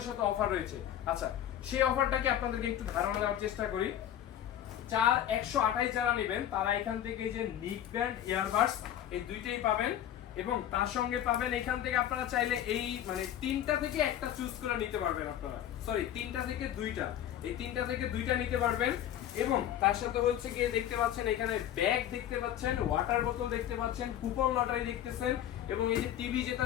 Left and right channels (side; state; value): right; quieter; 11.2 dB